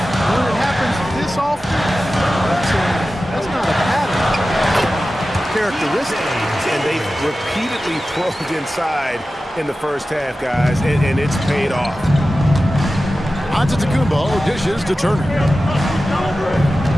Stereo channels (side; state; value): both; normal; correlation 0.94